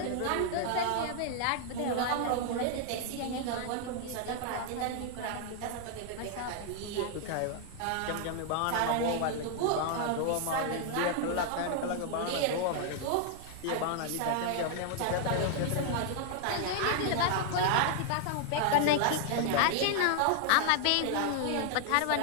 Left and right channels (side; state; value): both; different; correlation 0.00